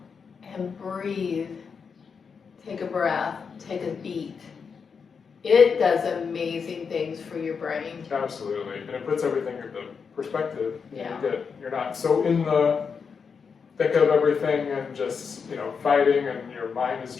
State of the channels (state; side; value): quieter; right; 5.9 dB